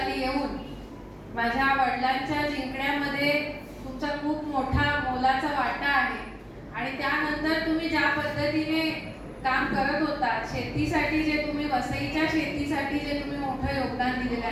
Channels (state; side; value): identical; both; correlation 1.00